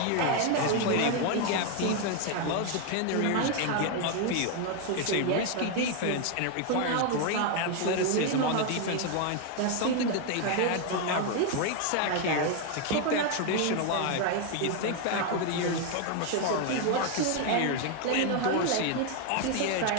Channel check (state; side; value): different; both; correlation 0.01